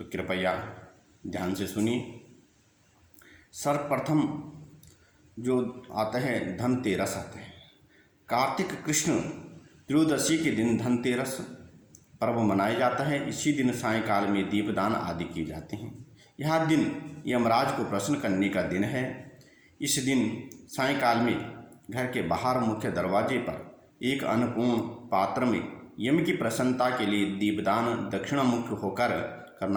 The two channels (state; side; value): identical; both; correlation 1.00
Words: कृपया ध्यान से सुनिए। सर्वप्रथम जो आता है धनतेरस आता है। कार्तिक कृष्ण त्रयोदशी के दिन धनतेरस पर्व मनाया जाता है। इसी दिन सायंकाल में दीपदान आदि किए जाते हैं। यह दिन यमराज को प्रसन्न करने का दिन है। इस दिन सायंकाल में घर के बाहर मुख्य दरवाजे पर एक अन्नपूर्ण पात्र में यम की प्रसन्नता के लिए दीपदान दक्षिणामुख होकर